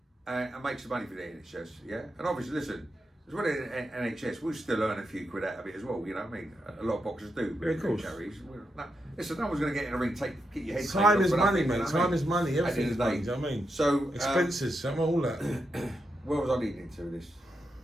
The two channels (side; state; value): both; normal; correlation 0.85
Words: Yeah. And make some money for the NHS. Yeah. And obviously, listen, as well as NHS, we'll still earn a few quid out of it as well. You know what I mean? A lot of boxers do. Yeah, of course. Listen, no one's going to get in the ring. Get your head. Time is money, mate. Time is money. Everything is money. Do you know what I mean? So expenses, all that. Where was I leading to this?